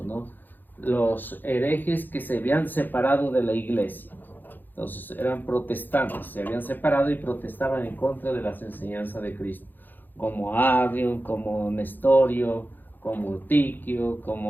¿no? Los herejes que se habían separado de la iglesia. Entonces eran protestantes, se habían separado y protestaban en contra de las enseñanzas de Cristo, como Arión, como Nestorio, como Tiquio,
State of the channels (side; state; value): right; late; 0.089 ms